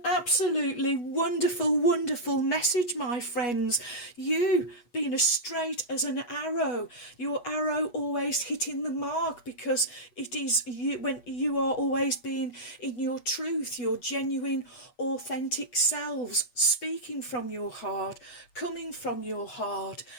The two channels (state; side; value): late; right; 8.2 ms